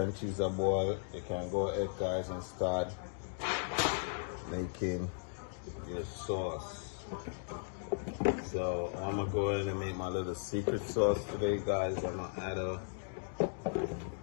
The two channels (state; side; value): silent; right; digital silence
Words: cheese are boiled, you can go ahead, guys, and start making your sauce. So I'm gonna go ahead and make my little secret sauce today, guys. I'm gonna add